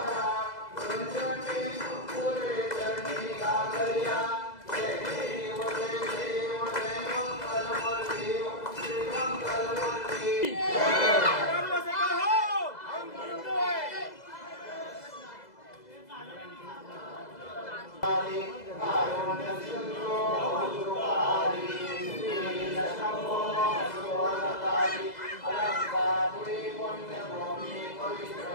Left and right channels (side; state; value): right; late; 2.0 ms